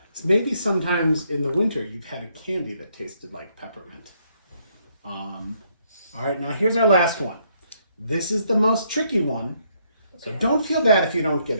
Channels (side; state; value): both; inverted; correlation -0.72